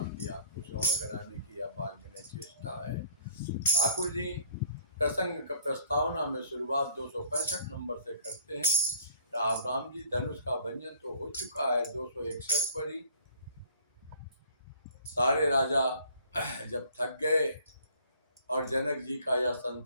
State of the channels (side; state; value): both; inverted; correlation -0.57